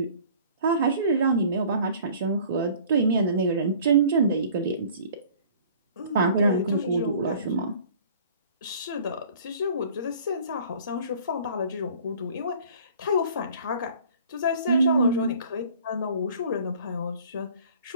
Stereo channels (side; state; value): both; inverted; correlation -0.49